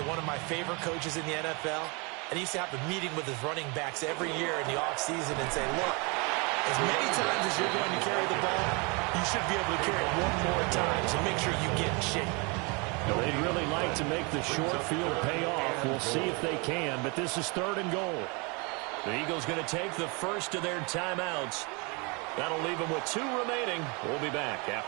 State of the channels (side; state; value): left; quieter; 30.4 dB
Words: one of my favorite coaches in the NFL, and he used to have a meeting with his running backs every year in the offseason and say, look, as many times as you're going to carry the ball, you should be able to carry it one more time, so make sure you get in shape. They'd really like to make the short field pay off. We'll see if they can, but this is 3rd and goal. The Eagles going to take the first of their timeouts. That'll leave them with 2 remaining. We'll be back